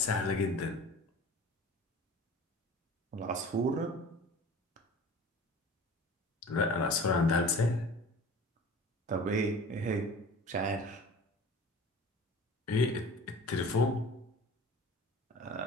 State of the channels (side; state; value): both; normal; correlation 0.41